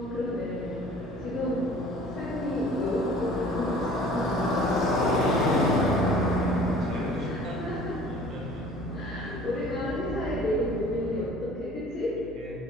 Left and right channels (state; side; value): noise; left; hum, 18 dB below the sound